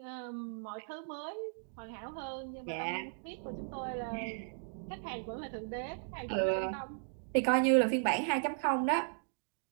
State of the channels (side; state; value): left; silent; digital silence